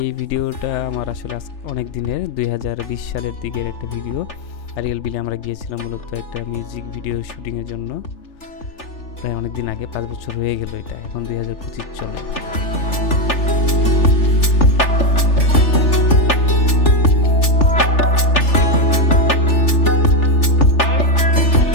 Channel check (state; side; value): late; right; 3.4 ms